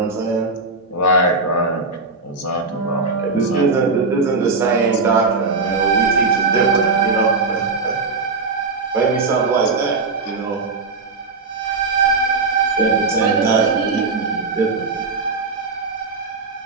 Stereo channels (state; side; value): quieter; left; 4.0 dB